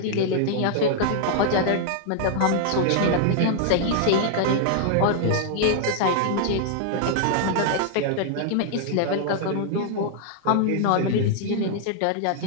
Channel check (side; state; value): both; different; correlation -0.01